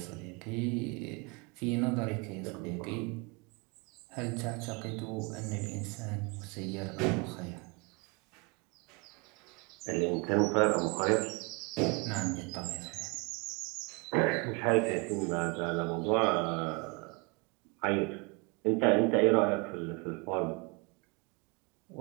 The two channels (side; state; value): left; quieter; 29.9 dB